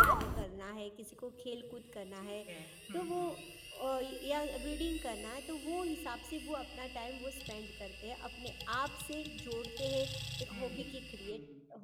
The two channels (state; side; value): identical; both; correlation 1.00